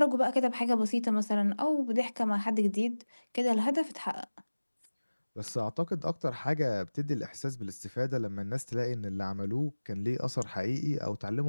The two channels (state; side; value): inverted; both; correlation -1.00